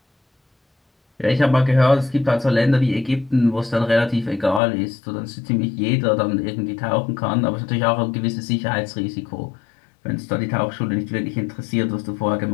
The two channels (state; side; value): drops out; right; at 4.6 s